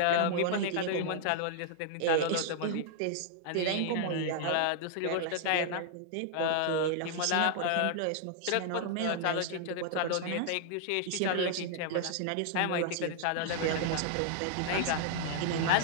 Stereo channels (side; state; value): both; different; correlation -0.01